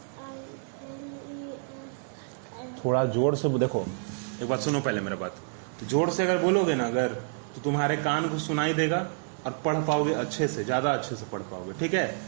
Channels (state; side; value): silent; left; 59 dB below the other